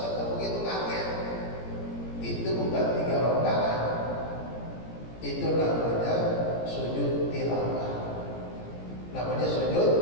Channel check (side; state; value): right; late; 17 ms